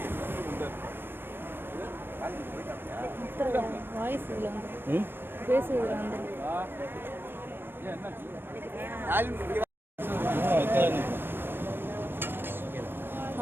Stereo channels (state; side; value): late; left; 0.099 ms